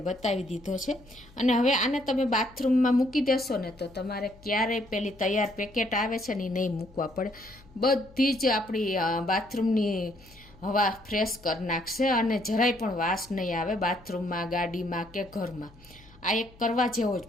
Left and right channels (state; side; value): noise; left; hum, 25 dB below the sound